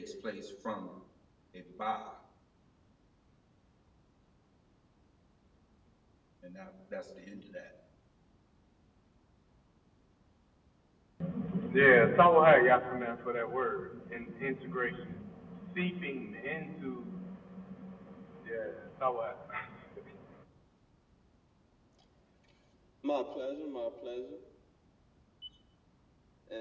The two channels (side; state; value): both; identical; correlation 1.00